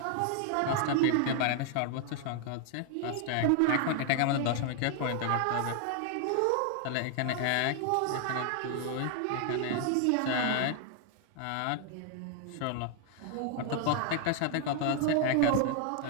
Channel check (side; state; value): both; different; correlation 0.00